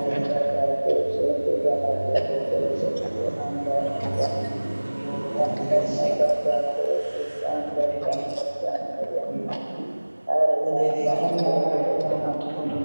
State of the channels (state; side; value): inverted; both; correlation -1.00